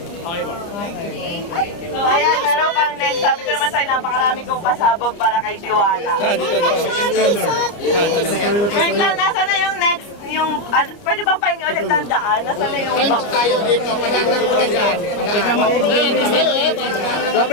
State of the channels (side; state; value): right; late; 29 ms